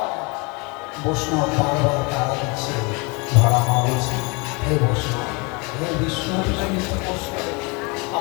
বৈষ্ণব বারবার তারা দিচ্ছে, ধরা মা বলছে, হে বৈষ্ণব, হে বিষ্ণু জনিত বৈষ্ণব,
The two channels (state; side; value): quieter; right; 28.5 dB